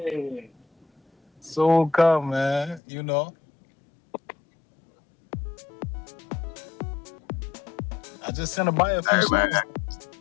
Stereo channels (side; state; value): right; drops out; at 2.8 s